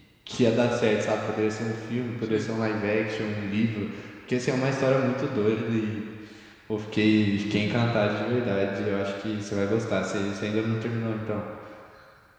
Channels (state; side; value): identical; both; correlation 1.00